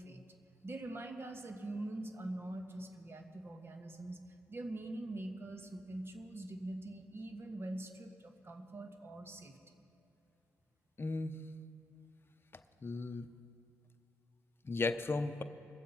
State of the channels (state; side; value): normal; both; correlation 0.84